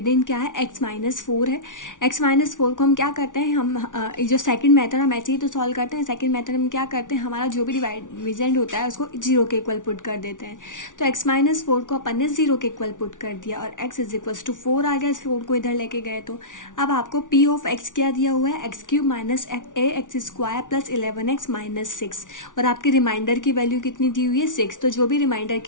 क्या है, x माइनस 4 है. x माइनस 4 को हम क्या करते हैं, हम जो सेकंड मेथड हम ऐसे ही तो सॉल्व करते हैं. सेकंड मेथड में क्या करते हैं, हमारा जो भी डिविडेंड होता है उसको 0 के इक्वल पुट कर देते हैं. तो x माइनस 4 को अपन ने 0 के इक्वल पुट कर दिया और x इज इक्वल्स टू 4 आ गया. इस 4 को इधर लेके गए तो अब आपको p ऑफ x क्या दिया हुआ है, x cube minus ax square plus 11x minus 6, और आपकी रिमाइंडर की वैल्यू कितनी दी हुई है, 6. तो जो भी रिमाइंडर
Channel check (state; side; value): late; right; 0.87 ms